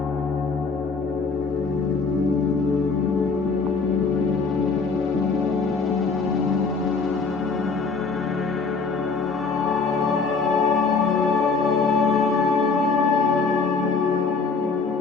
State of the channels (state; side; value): quieter; right; 4.6 dB